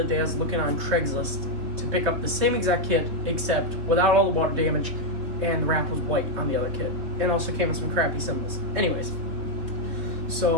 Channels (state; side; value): late; left; 3.1 ms